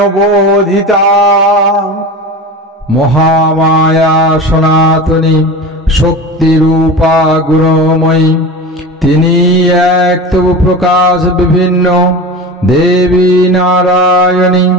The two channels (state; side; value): normal; both; correlation 0.30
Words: বোধিতা। মহামায়া সনাতনী শক্তিরূপা গুণময়ী, তিনি এক তবু প্রকাশ বিভিন্ন দেবী নারায়ণী।